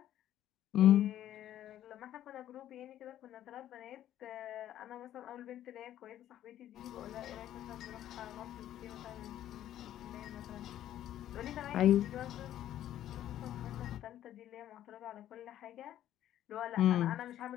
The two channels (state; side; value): quieter; right; 12.1 dB